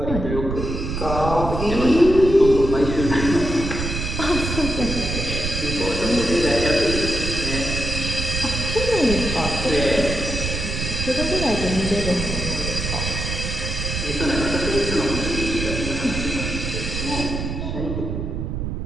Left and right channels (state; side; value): noise; right; rumble, 4 dB below the sound